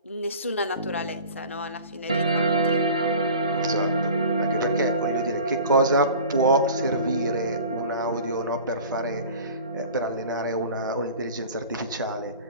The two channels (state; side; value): inverted; both; correlation -0.41